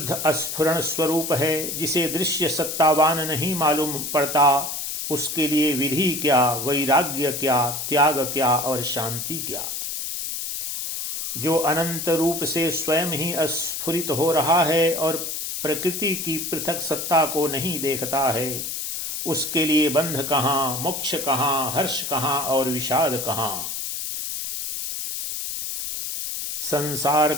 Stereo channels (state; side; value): noise; left; hiss, 4 dB below the sound